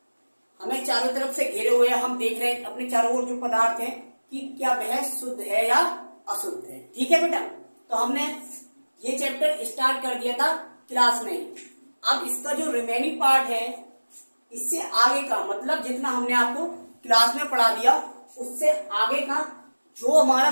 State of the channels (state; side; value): inverted; both; correlation -1.00